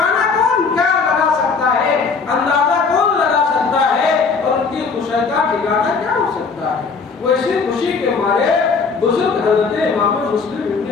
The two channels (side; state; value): right; quieter; 4.9 dB